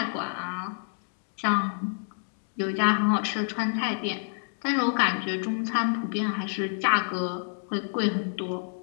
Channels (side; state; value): right; silent; digital silence